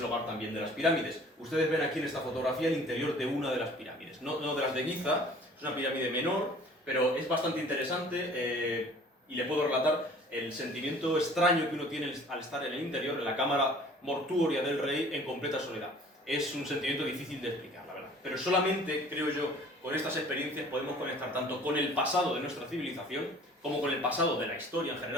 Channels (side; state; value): both; normal; correlation 0.50